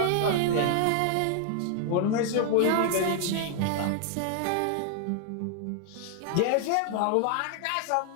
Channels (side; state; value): both; different; correlation 0.00